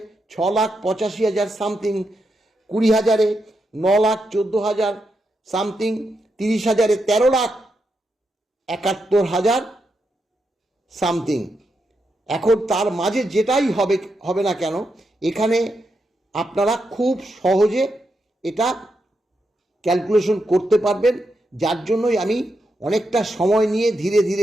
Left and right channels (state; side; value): normal; both; correlation 0.84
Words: 6,85,000 সামথিং, 20,000-এ 9,14,000 সামথিং, 30,000-এ 13,71,000 সামথিং। এখন তার মাঝে যেটাই হবে না কেন, এখানে আপনারা খুব সহজে এটা ক্যালকুলেশন করতে পারবেন, যার জন্যই আমি অনেকটা সময় নিয়ে ধীরে